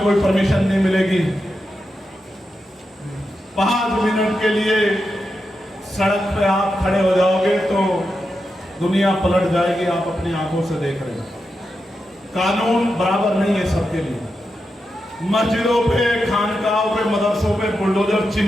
परमिशन नहीं मिलेगी। 5 मिनट के लिए सड़क पे आप खड़े हो जाओगे तो दुनिया पलट जाएगी। आप अपनी आंखों से देख रहे हैं। कानून बराबर नहीं है सबके लिए। मस्जिदों पे, खानकाहों पे, मदरसों पे बुलडोजर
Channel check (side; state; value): both; normal; correlation 0.88